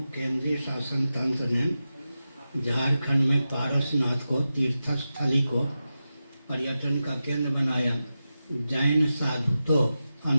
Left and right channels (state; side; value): inverted; both; correlation -0.92